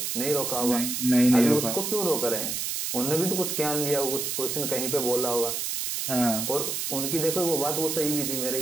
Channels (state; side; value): noise; right; hiss, 2 dB below the sound